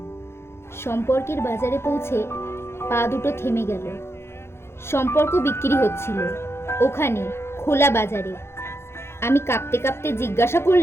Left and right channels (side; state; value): right; late; 0.12 ms